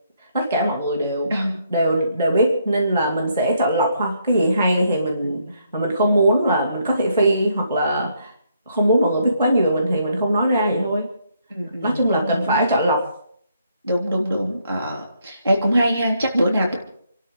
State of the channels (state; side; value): inverted; both; correlation -0.73